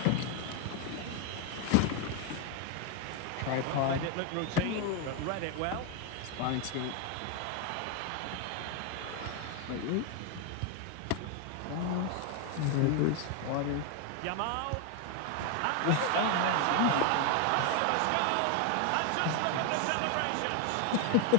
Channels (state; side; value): different; both; correlation 0.01